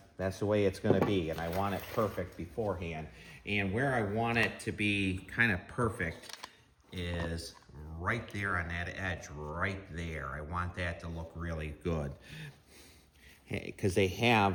the way it's going to be, and I want it perfect beforehand. And where I want it to be kind of perfect is right there on that edge, right there. I want that to look really good because they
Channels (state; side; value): identical; both; correlation 1.00